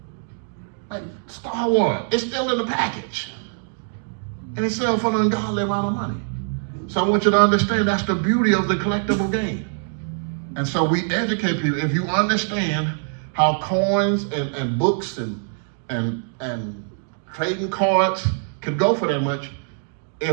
Like Star Wars, it's still in the package. And it's selling for an ungodly amount of money. So I want you to understand that's the beauty of the collectible game. And so we educate people. If you understand how coins and books and trading cards could go for that much,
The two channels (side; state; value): left; silent; 63 dB below the other